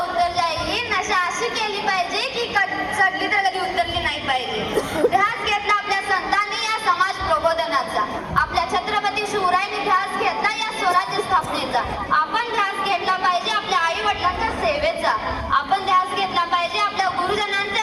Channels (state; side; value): identical; both; correlation 1.00